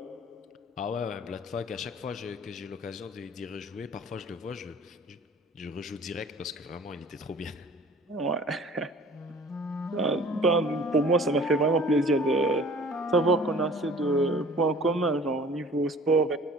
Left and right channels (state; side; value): normal; both; correlation 0.48